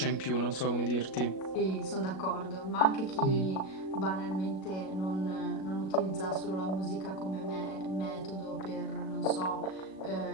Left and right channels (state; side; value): late; right; 37 ms